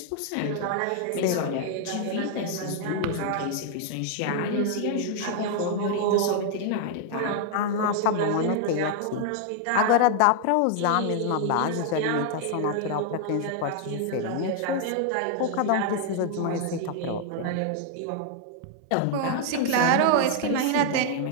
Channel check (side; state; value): both; different; correlation 0.00